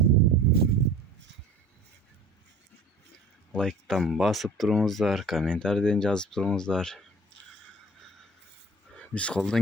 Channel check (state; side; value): normal; both; correlation 0.45